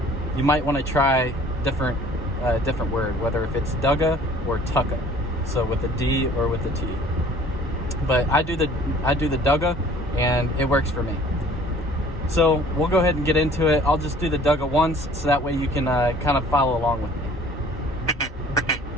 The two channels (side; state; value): both; normal; correlation 0.52